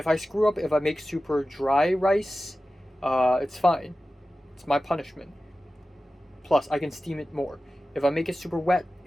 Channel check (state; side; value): normal; both; correlation 0.95